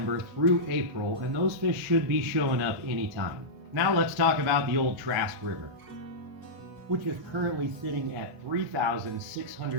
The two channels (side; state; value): left; late; 1.4 ms